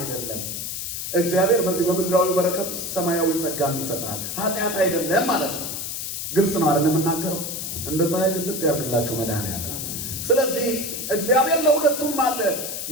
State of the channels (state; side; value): noise; left; hiss, 5 dB below the sound